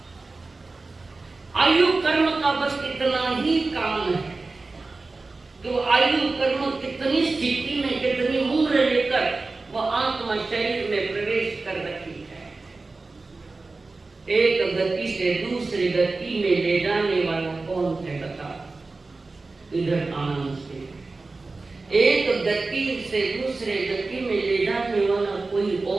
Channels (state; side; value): quieter; left; 3.6 dB